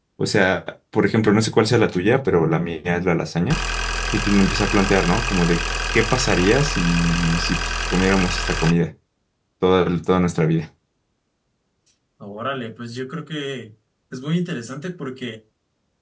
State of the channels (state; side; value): identical; both; correlation 1.00